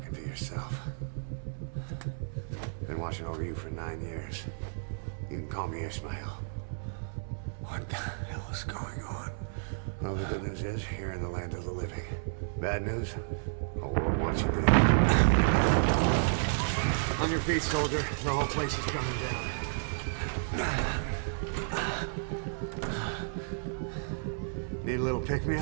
to yourself. Been watching over you for 9 years. You can call me Ishmael. What the hell is going on? Well, the good news is, you're in the land of the living. Bad news? The world wants you dead. On your feet, soldier. The whole place is coming down. Need a little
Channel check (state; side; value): silent; left; 57 dB below the other